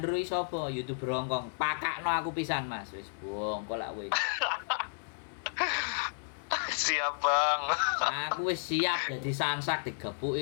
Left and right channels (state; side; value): silent; right; digital silence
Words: iki sapa? YouTuber Hongkong. Pakakno aku pisan, Mas." Wis bongkol lak kowe. Siap Bang. Aku wis siap dadi sansak